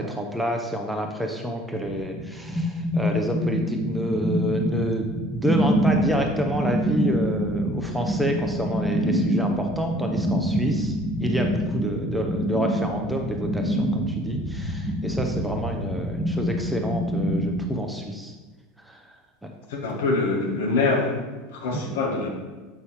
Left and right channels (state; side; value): normal; both; correlation 0.52